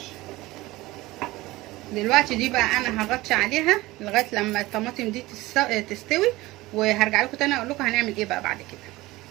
دلوقتي دي بقى انا هغطي عليها لغايه لما الطماطم دي تستوي، وهرجع لكم تاني اقول لكم هنعمل ايه بقى بعد كده.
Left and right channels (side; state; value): left; quieter; 19.3 dB